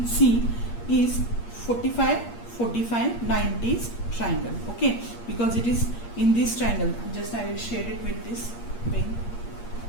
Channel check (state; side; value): late; right; 8.5 ms